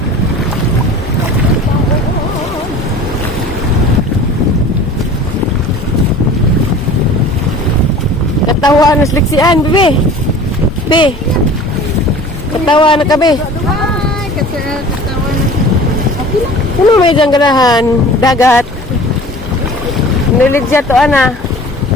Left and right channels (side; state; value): both; normal; correlation 0.43